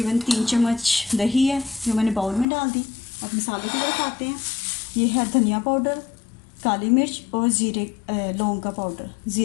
3 चम्मच दही है जो मैंने बाउल में डाल दी। अब मसालों की तरफ आते हैं। ये है धनिया पाउडर, काली मिर्च और लौंग का पाउडर,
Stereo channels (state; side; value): drops out; right; at 2.5 s